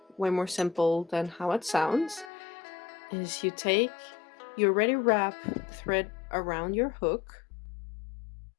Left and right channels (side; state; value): right; drops out; at 2.3 s